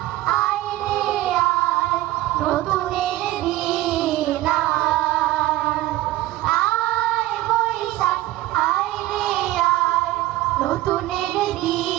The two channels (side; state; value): left; quieter; 16.0 dB